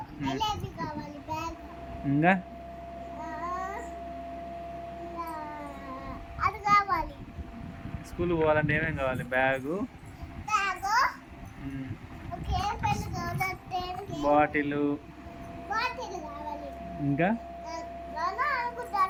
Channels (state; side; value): identical; both; correlation 1.00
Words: ఎలాంటి కావాలి బ్యాగ్ ఇంకా అది కావాలి. స్కూల్ పోవాలంటే ఏమేమి కావాలి? బ్యాగు, ఓకే పెన్ కావాలి, బాటిల్ కావాలి. ఇంకా